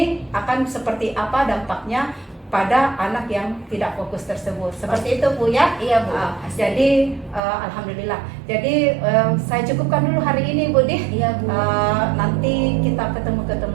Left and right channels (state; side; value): drops out; left; at 7.4 s